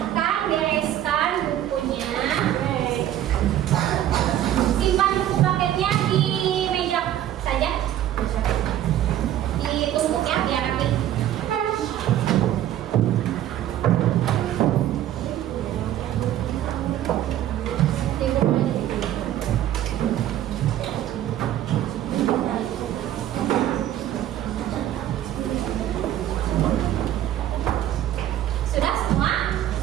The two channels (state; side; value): quieter; left; 12.1 dB